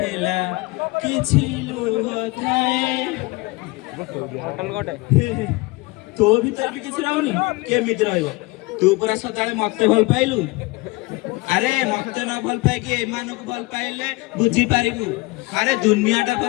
କିଛି ଲୁହ ଥାଏ। ତୋ ଭିତରେ ବି କିଛି ରହୁନି କେମିତି ରହିବ? ତୁ ପୁରା ସଦାବେଳେ ମତେ ଭଲ ପାଇଲୁ। ଆରେ ମତେ ନ ଭଲ ପାଇକି ଏମାନଙ୍କୁ ଭଲ ପାଇଲେ ବୁଝିପାରିବୁ। ଆରେ ଦୁନିଆଟା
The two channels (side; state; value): right; quieter; 23.8 dB